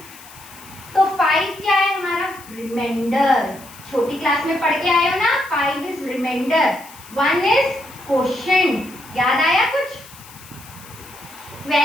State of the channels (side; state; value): left; noise; hiss, 20 dB below the sound